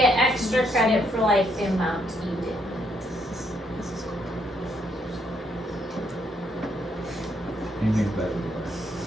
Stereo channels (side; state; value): both; normal; correlation 0.73